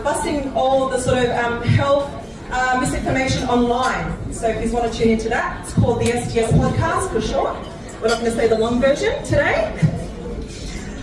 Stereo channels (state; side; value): identical; both; correlation 1.00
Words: busting all the sort of health misinformation online. So if you want to tune into that, it's called the STS podcast for short. We're not going to say the long version today.